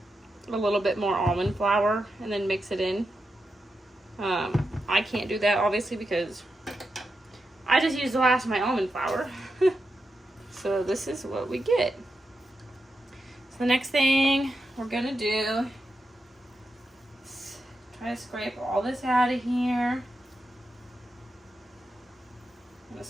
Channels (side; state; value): both; normal; correlation 0.87